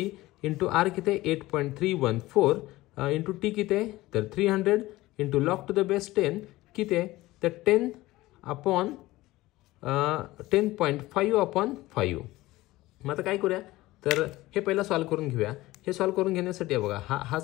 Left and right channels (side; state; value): right; quieter; 18.2 dB